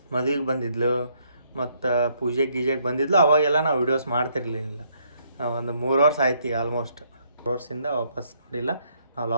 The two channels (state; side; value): inverted; both; correlation -0.70